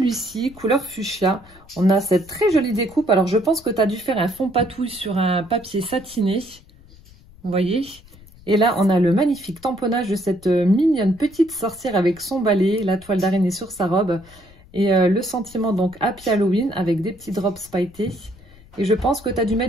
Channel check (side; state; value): left; noise; rumble, 24 dB below the sound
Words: couleur fuchsia. On a cette très jolie découpe. Alors, je pense que tu as dû faire un fond patouille sur un papier satiné. Vous voyez? Et là, on a le magnifique tamponnage de cette mignonne petite sorcière avec son balai, la toile d'araignée sur sa robe. Et le sentiment, donc, Happy Halloween avec des petits drops pailletés. Et je pense que tu as dû